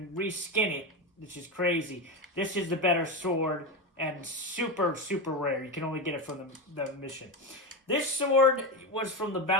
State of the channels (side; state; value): both; normal; correlation 0.16